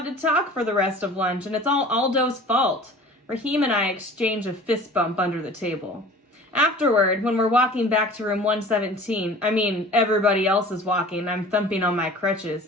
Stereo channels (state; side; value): normal; both; correlation 0.43